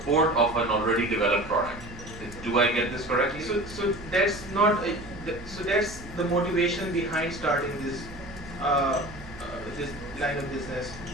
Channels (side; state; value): right; noise; hum, 16 dB below the sound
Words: of an already developed product. Do I get this correctly? So that's not so that's the motivation behind starting this this line of business.